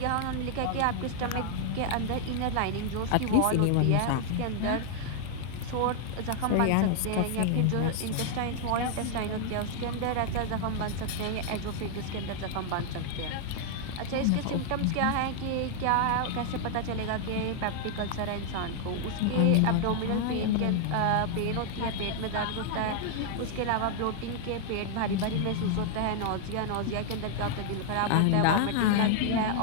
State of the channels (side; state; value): both; different; correlation 0.00